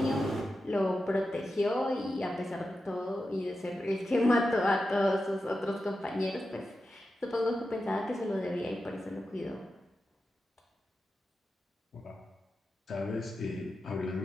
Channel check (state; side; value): normal; both; correlation 0.91